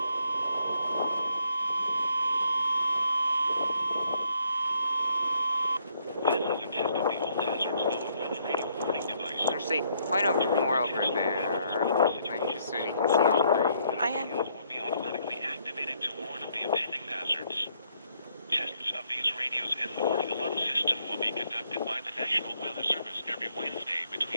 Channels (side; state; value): both; inverted; correlation -0.69